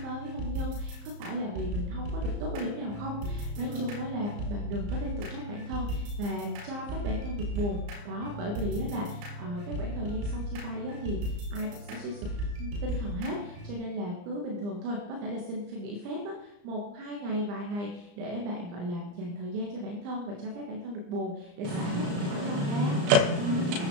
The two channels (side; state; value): left; late; 34 ms